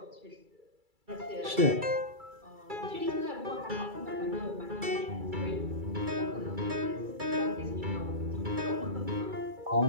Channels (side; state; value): left; late; 2.3 ms